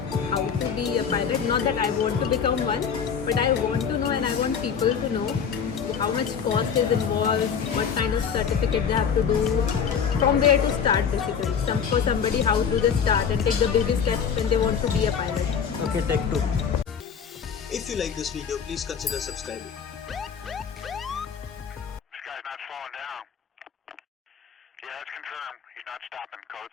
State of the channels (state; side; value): quieter; right; 7.0 dB